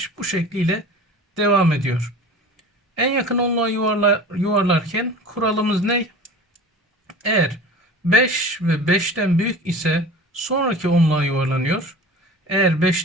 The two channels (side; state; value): both; normal; correlation 0.38